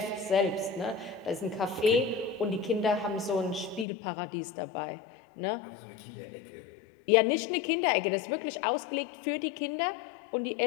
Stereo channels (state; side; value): drops out; right; at 3.9 s